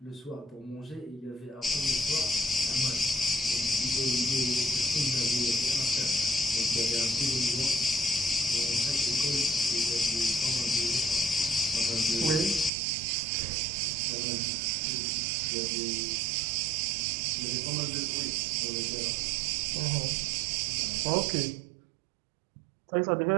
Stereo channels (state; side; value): drops out; left; at 12.7 s